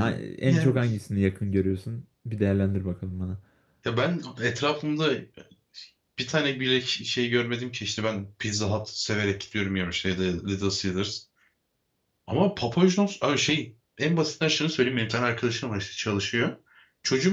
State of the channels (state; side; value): identical; both; correlation 1.00